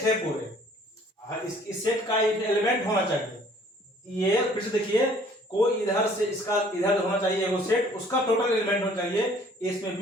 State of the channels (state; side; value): normal; both; correlation 0.56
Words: है पूरे, इस सेट का एलिमेंट होना चाहिए। ये फिर से देखिए, कोई इधर से इसका इधर होना चाहिए वो सेट, उसका टोटल एलिमेंट होना चाहिए, इसमें